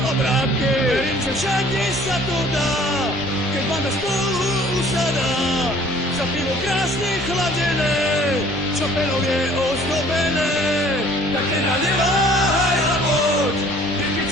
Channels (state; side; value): normal; both; correlation 0.54